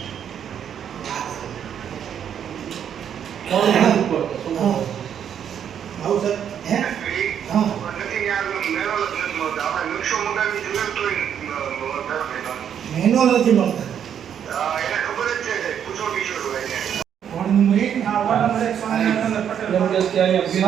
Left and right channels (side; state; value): left; quieter; 8.8 dB